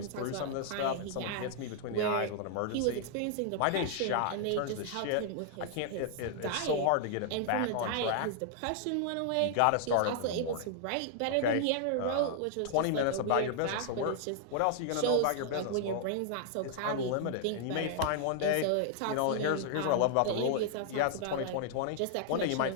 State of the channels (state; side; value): different; both; correlation -0.01